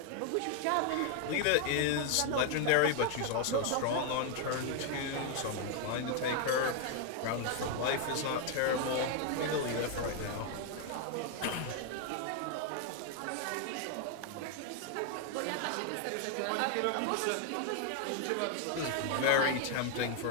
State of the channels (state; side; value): different; both; correlation 0.00